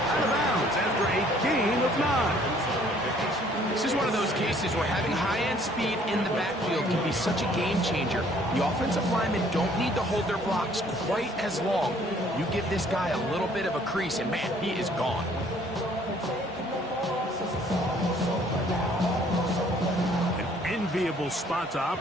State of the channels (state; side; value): normal; both; correlation 0.59